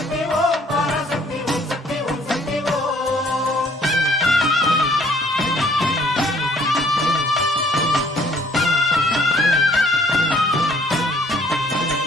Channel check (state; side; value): normal; both; correlation 0.60